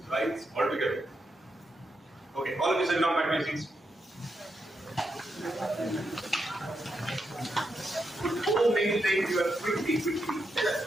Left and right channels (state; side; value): normal; both; correlation 0.83